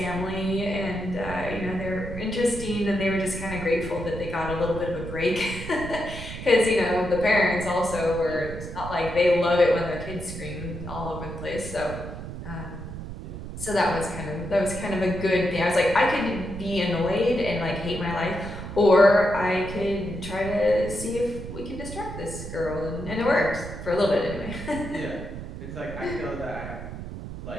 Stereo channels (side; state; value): right; noise; rumble, 9 dB below the sound